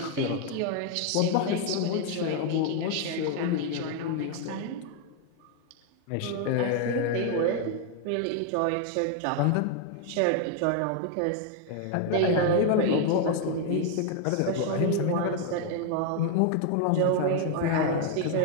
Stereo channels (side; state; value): both; different; correlation 0.00